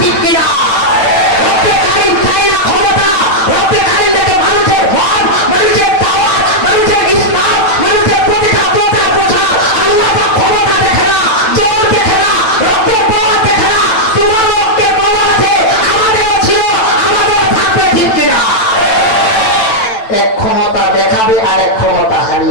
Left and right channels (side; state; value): right; late; 9.1 ms